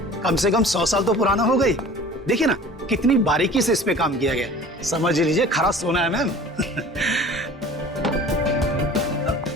कम से कम 100 साल तो पुराना हो गई। देखिए ना कितनी बारीकी से इस पे काम किया गया, समझ लीजिए खरा सोना है मैम।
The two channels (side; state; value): both; normal; correlation 0.44